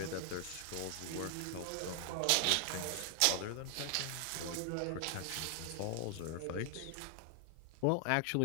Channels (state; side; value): different; both; correlation 0.00